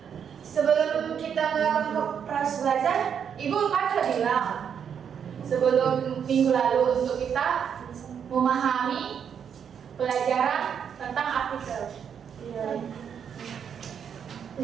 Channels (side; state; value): left; quieter; 7.8 dB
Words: Sebelum kita melakukan proses belajar, Ibu kan sudah bilang sebelum minggu lalu untuk kita memahami pelajaran tentang artikel. Iya. Di